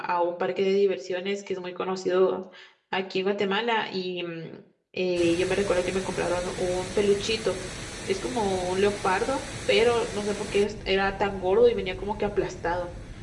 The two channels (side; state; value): both; identical; correlation 1.00